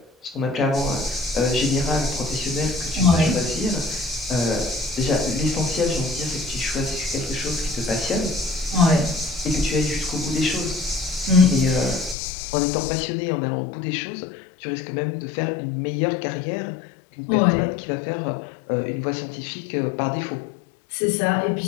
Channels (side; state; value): right; drops out; at 12.2 s